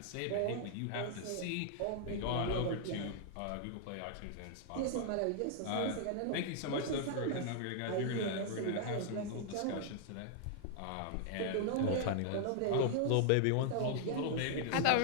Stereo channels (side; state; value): both; different; correlation 0.00